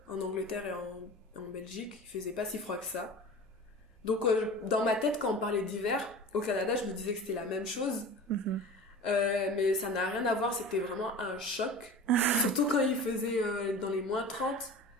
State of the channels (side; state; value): both; normal; correlation 0.36